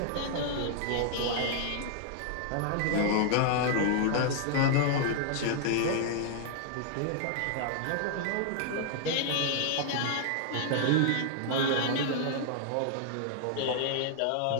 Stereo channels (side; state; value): both; different; correlation -0.01